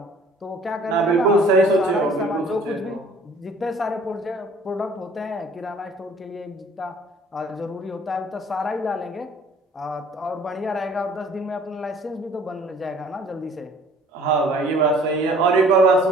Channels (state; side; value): normal; both; correlation 0.53